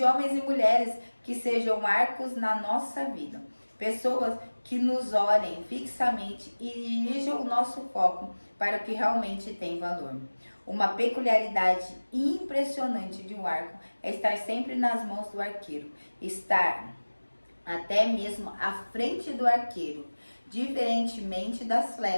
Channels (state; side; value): inverted; both; correlation -1.00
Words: homens e mulheres que sejam arcos na nossa vida, pessoas que nos olhem fixamente e dirijam o nosso foco para o que realmente tem valor. Uma peculiaridade impressionante de um arco é estar sempre nas mãos do arqueiro, estar até mesmo à frente do arqueiro, diferentemente das